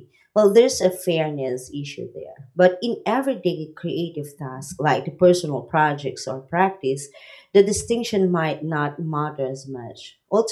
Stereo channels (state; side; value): identical; both; correlation 1.00